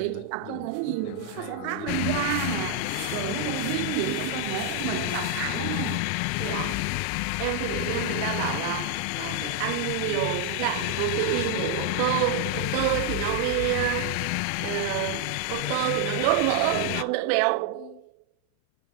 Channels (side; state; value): both; different; correlation 0.00